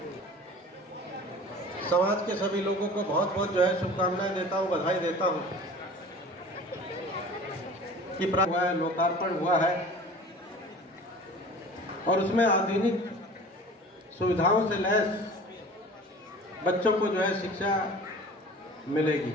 समाज के सभी लोगों को बहुत बहुत जो है शुभकामनाएं देता हूं, बधाई देता हूं कि हुआ है, लोकार्पण हुआ है और उसमें आधुनिक सुविधाओं से लैस बच्चों को जो है शिक्षा मिलेगी।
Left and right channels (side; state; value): both; normal; correlation 0.41